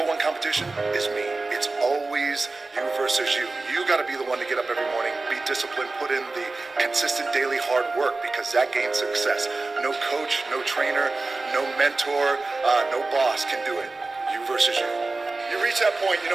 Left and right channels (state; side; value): quieter; left; 3.5 dB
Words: one competition is me. It's always you versus you. You got to be the one to get up every morning, be disciplined, put in the consistent daily hard work, because that gains success. No coach, no trainer, no mentor, no boss can do it. You versus you. You reach that point,